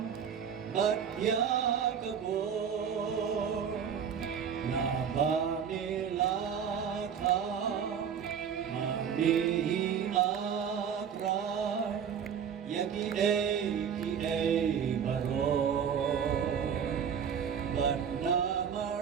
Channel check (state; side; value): quieter; left; 7.6 dB